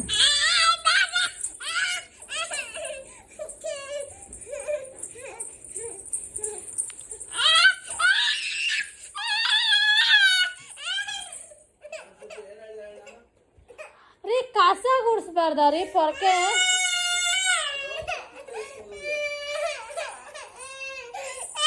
ರೀ ಕಸ ಗುಡಿಸ್ಬಾರ್ದ ರೀ, ಪೊರಕೆ?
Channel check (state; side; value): identical; both; correlation 1.00